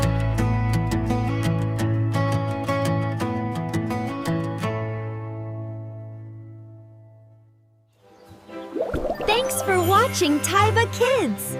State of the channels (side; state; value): both; identical; correlation 1.00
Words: Thanks for watching Taiba Kids!